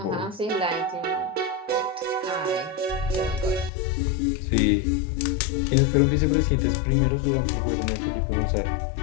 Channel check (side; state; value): right; drops out; at 3.7 s